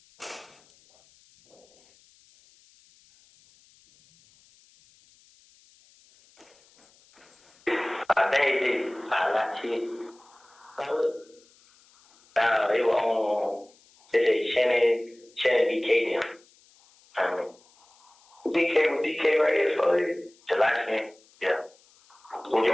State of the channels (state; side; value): noise; left; hiss, 30 dB below the sound